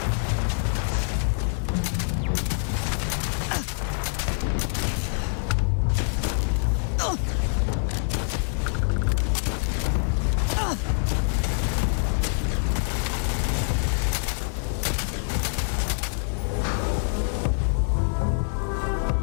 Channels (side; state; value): right; silent; 61 dB below the other